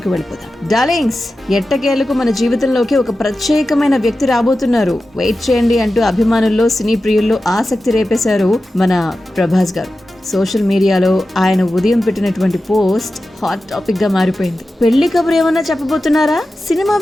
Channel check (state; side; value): normal; both; correlation 0.93